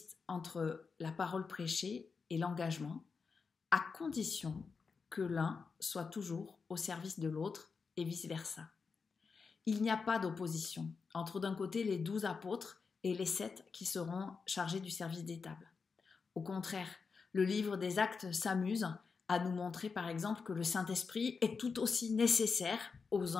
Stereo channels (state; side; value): quieter; right; 5.1 dB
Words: entre la parole prêchée et l'engagement, à condition que l'un soit toujours au service de l'autre et vice-versa. Il n'y a pas d'opposition entre d'un côté les 12 apôtres et les 7 qui seront chargés du service des tables. Au contraire, le livre des Actes s'amuse à nous montrer par exemple que le Saint-Esprit est tout aussi nécessaire aux